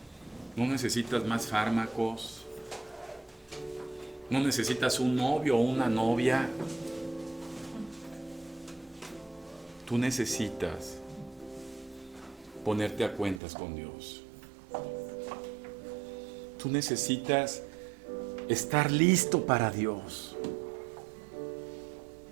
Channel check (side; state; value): left; drops out; at 13.4 s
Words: no necesitas más fármacos, no necesitas un novio o una novia. Tú necesitas ponerte a cuentas con Dios. Tú necesitas estar listo para Dios.